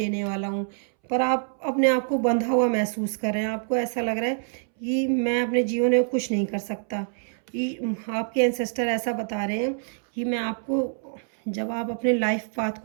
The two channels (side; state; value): left; silent; 61 dB below the other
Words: वाला हूँ, पर आप अपने आप को बंधा हुआ महसूस कर रहे हैं। आपको ऐसा लग रहा है कि मैं अपने जीवन में कुछ नहीं कर सकता। आपके एंसेस्टर ऐसा बता रहे हैं कि मैं आपको, जब आप अपने लाइफ पाथ